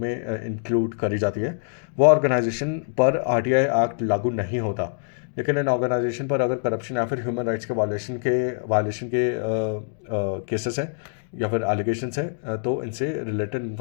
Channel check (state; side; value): silent; right; digital silence